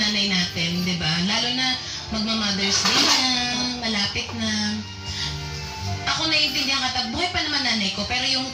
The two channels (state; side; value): identical; both; correlation 1.00